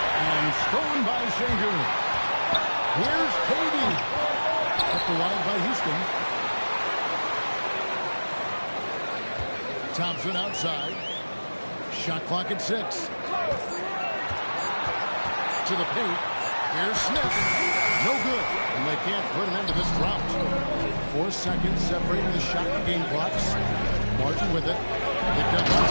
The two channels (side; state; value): both; inverted; correlation -1.00